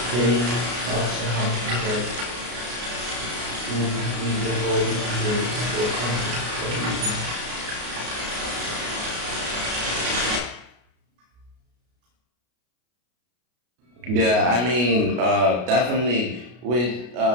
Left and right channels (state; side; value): late; left; 33 ms